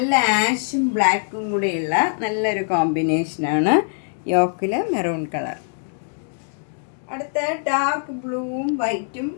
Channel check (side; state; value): right; silent; 64 dB below the other